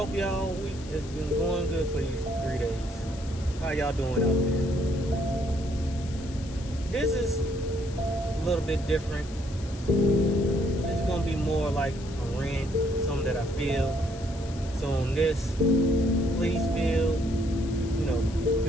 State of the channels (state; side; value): noise; left; hiss, 18 dB below the sound